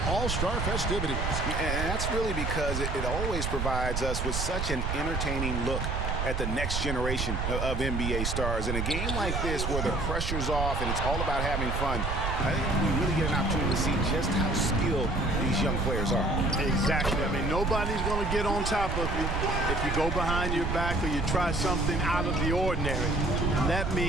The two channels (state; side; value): noise; right; rumble, 1 dB below the sound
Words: all-star festivities. And that's really because it always provides us with such an entertaining look at the next generation of NBA stars. In a game like this where the pressure's off and it's all about having fun, I think we really get an opportunity to see just how skilled these young players are. Exactly. I mean, nobody's going to get on top of you if you go behind your back or you try something out of the ordinary. And that